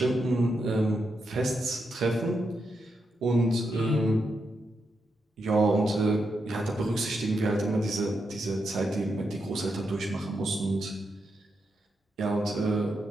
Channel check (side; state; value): both; normal; correlation 0.84